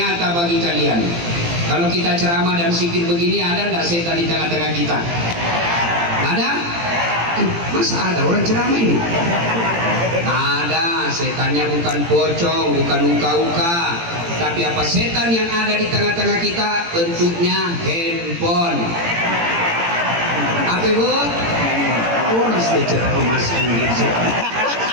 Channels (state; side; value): late; left; 18 ms